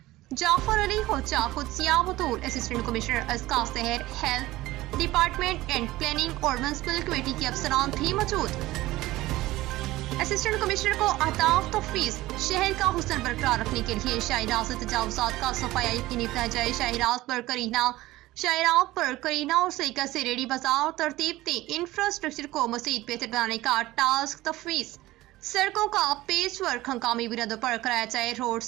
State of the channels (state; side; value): quieter; left; 17.6 dB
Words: Jafar Ali Hocha, Qudsia Batool, assistant commissioner Azka Sehar, health department and planning اور میونسپل کمیٹی کے افسران بھی موجود۔ اسسٹنٹ کمشنر کو اہداف تفویض۔ شہر کا حسن برقرار رکھنے کے لیے شاہراہ سے تجاوزات کا صفایا یقینی بنایا جائے۔ شاہراہ پر کرینہ اور سلیقہ سے ریڈی بازار ترتیب دیں۔ انفراسٹرکچر کو مزید بہتر بنانے کا ٹاسک تفویض۔ سڑکوں کا پیچ ورک ہنگامی بنیادوں پر کرایا جائے۔ روڈ